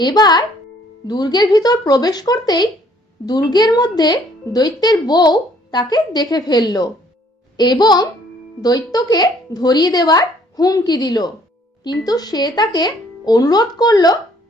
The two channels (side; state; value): both; normal; correlation 0.61